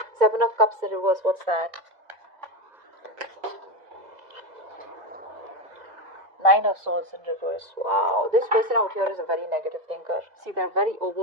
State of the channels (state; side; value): late; left; 2.0 ms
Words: Seven of Cups in reverse. What's that? Nine of Swords in reverse. Wow, this person out here is a very negative thinker. See, they're very